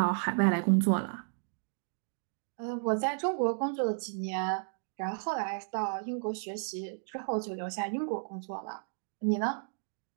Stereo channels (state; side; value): silent; left; digital silence